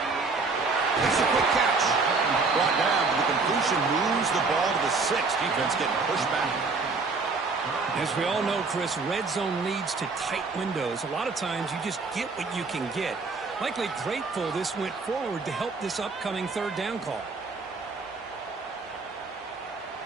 It's a quick catch. Brought down, but the completion moves the ball to the 6. Defense getting pushed back. As we all know, Chris, red zone leads to tight windows. A lot of times you just get what you can get. Likely grateful this went forward to help this upcoming third down call.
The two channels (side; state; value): left; quieter; 4.2 dB